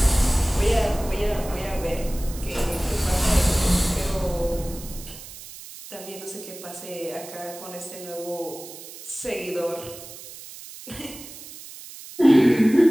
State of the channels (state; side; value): noise; right; hiss, 15 dB below the sound